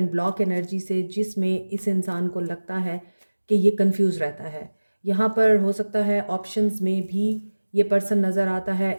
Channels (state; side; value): inverted; both; correlation -1.00